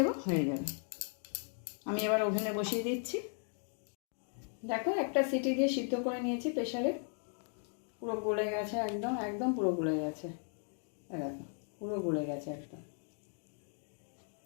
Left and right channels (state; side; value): silent; right; 53 dB below the other